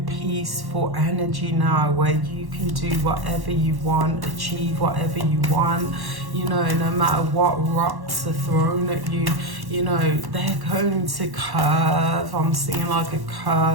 peaceful energy now where you can do whatever you want, achieve whatever you want. You know, no matter what rocks are thrown at you, you know, they're going to curve. I'm seeing like a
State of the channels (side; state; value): left; late; 1.1 ms